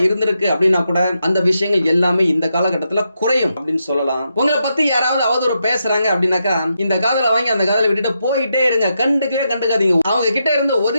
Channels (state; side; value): inverted; both; correlation -0.83